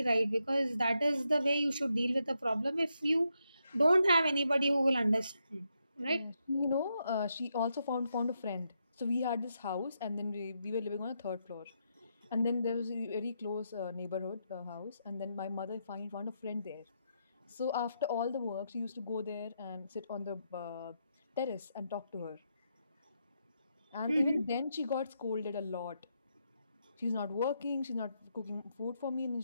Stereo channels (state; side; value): inverted; both; correlation -0.81